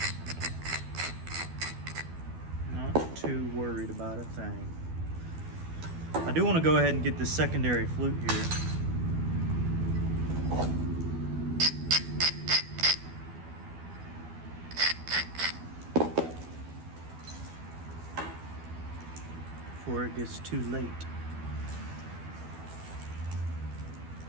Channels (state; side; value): late; left; 12 ms